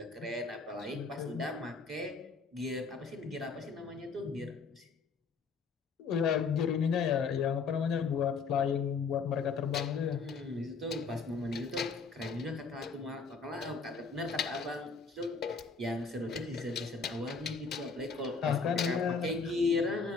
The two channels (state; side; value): quieter; right; 4.9 dB